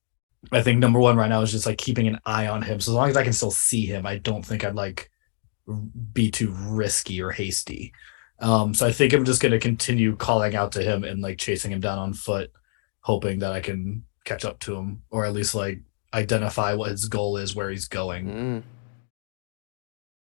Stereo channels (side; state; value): right; silent; digital silence